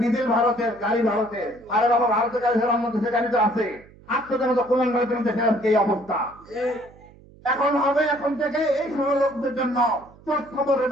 ডিজেল ভারতের, গাড়ি ভারতের। আরে বাবা, ভারতের গাড়ি ছাড়া অন্য দেশের গাড়ি তো আছে। আপনাদের মতো কুলাঙ্গারের জন্য দেশের আজকে এই অবস্থা। এখন হবে, এখন থেকে এই সময় লোকদের জন্য চোখ খবরে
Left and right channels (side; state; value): right; noise; hum, 24 dB below the sound